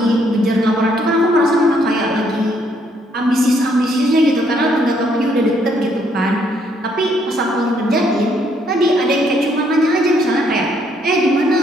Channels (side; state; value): both; normal; correlation 0.70